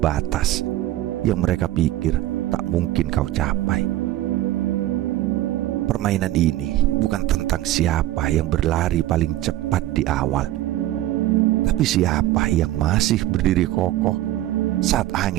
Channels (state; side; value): quieter; left; 14.9 dB